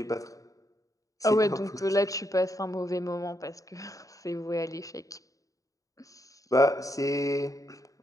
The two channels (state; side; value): late; right; 0.16 ms